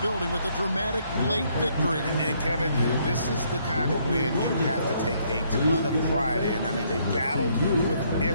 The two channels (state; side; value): inverted; both; correlation -0.69